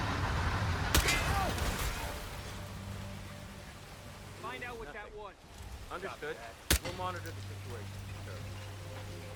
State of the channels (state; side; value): identical; both; correlation 1.00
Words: Find out what that was. Understood. We'll monitor the situation, sir.